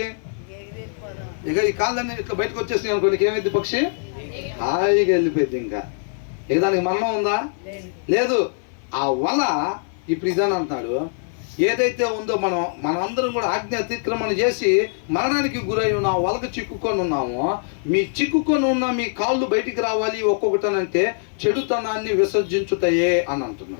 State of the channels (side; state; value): right; silent; 57 dB below the other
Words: ఇక ఈ కాళ్ళన్నీ ఇట్లా బయటకు వచ్చేసినాయి అనుకోండి, ఏమైంది, పక్షి హాయిగా వెళ్ళిపోయింది. ఇంకా ఇక దానికి మరణం ఉందా? లేదు. ఆ వల ఇప్పుడు ఇదని అంటున్నాడు, ఏదైతే ఉందో మనందరం కూడా ఆజ్ఞ అతిక్రమణ చేసి మరణానికి గురై ఉన్న వలకు చిక్కుకొని ఉన్నామో, మీ చిక్కుకొని ఉన్న మీ కాళ్ళు బయటికి రావాలి ఒక్కొక్కటనంటే చెడుతనాన్ని విసర్జించుతాయే అని